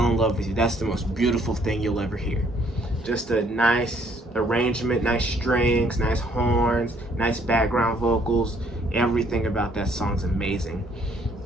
in Love with You, that's the most beautiful thing you'll ever hear. Just a nice arrangement, nice strings, nice horns, nice background vocals. Everything about that song's amazing.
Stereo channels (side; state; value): both; normal; correlation 0.65